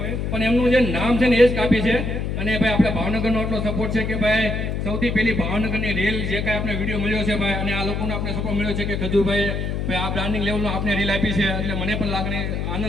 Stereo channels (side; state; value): left; noise; hum, 2 dB below the sound